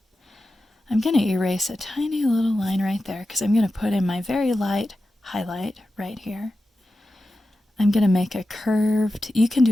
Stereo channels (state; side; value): normal; both; correlation 0.92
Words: I'm going to erase a tiny little line right there because I'm going to put in my very light highlight right here. I'm going to make a curved, you can